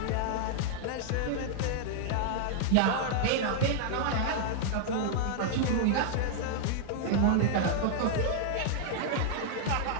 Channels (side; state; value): both; different; correlation 0.00